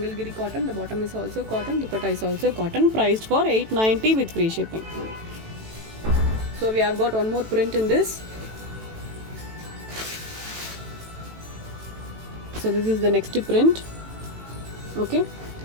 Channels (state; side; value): late; left; 18 ms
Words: cotton, the bottom is also cotton, dupatta is also cotton, priced for $890 with free shipping. So we have got one more print in this. So this is the next print. Okay,